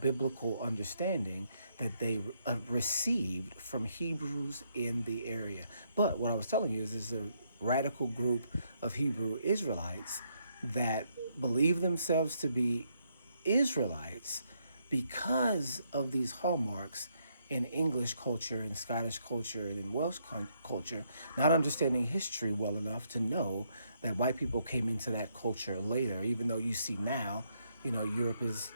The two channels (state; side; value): inverted; both; correlation -0.74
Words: understanding that they received from Hebrews in the area. But what I was telling you is there's a radical group of Hebrew Israelites that believe themselves to be Israelites because of these hallmarks in English culture, in Scottish culture, and in Welsh culture, not understanding history well enough to know that white people came into that culture later, even though you see now, Europe has